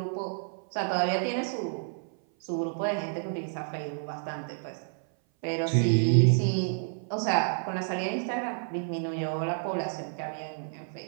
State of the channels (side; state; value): left; silent; 57 dB below the other